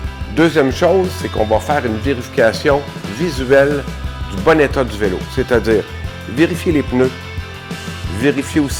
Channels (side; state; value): both; identical; correlation 1.00